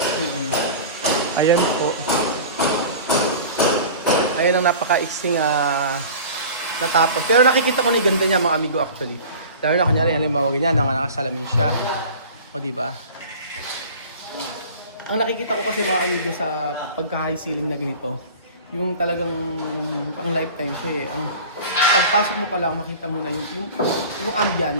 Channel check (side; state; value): both; inverted; correlation -0.39